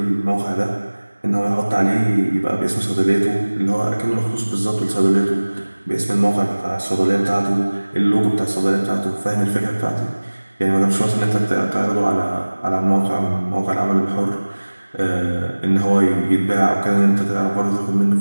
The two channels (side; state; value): both; inverted; correlation -1.00